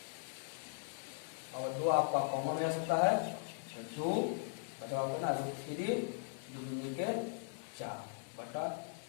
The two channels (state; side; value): silent; right; 52 dB below the other